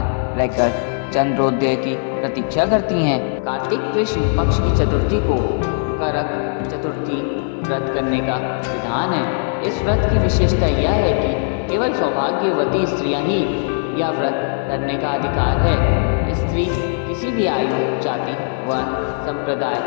रहकर चंद्रोदय की प्रतीक्षा करती हैं। कार्तिक कृष्ण पक्ष की चतुर्थी को करक चतुर्थी व्रत करने का विधान है। इस व्रत की विशेषता यह है कि केवल सौभाग्यवती स्त्रियां ही यह व्रत करने का अधिकार है। स्त्री किसी भी आयु, जाति व संप्रदाय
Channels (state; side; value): silent; right; 62 dB below the other